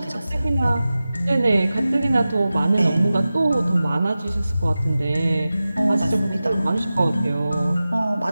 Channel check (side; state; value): both; inverted; correlation -0.95